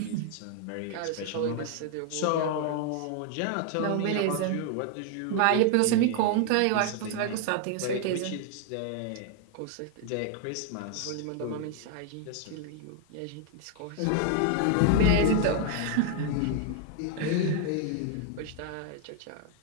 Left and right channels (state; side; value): different; both; correlation 0.00